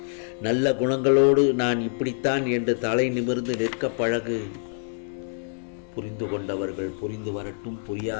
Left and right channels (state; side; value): silent; right; digital silence